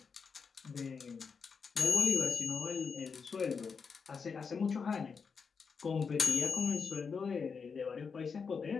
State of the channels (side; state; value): right; quieter; 5.6 dB